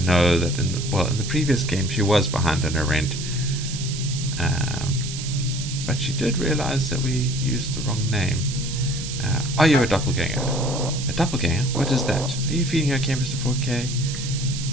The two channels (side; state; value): right; noise; hiss, 8 dB below the sound